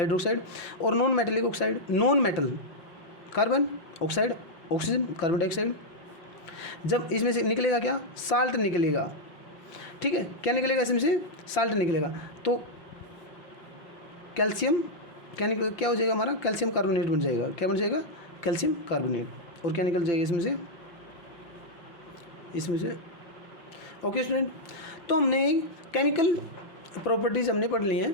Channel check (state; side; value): late; right; 5.8 ms